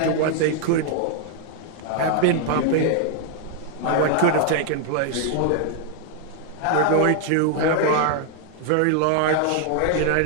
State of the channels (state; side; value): different; both; correlation 0.00